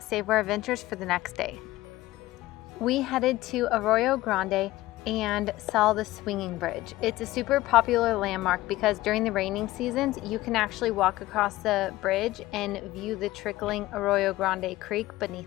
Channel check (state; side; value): quieter; right; 17.2 dB